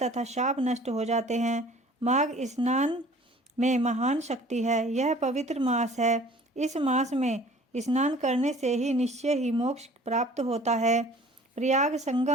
तथा शाप नष्ट हो जाते हैं। माघ स्नान में महान शक्ति है। यह पवित्र मास है। इस मास में स्नान करने से ही निश्चय ही मोक्ष प्राप्त होता है। प्रयाग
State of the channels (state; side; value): normal; both; correlation 0.49